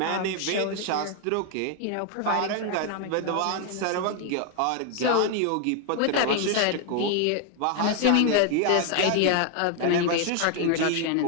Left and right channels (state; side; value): different; both; correlation 0.01